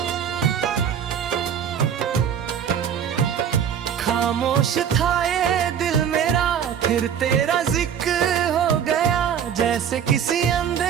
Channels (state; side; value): quieter; left; 8.4 dB